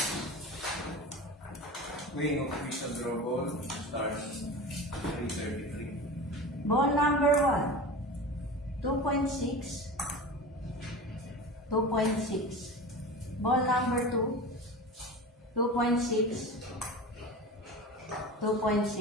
Weighing of official draw ball starts 333. Ball number 1, 2.6, 2.6. Ball number 2, 2.6,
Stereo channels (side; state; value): both; normal; correlation 0.31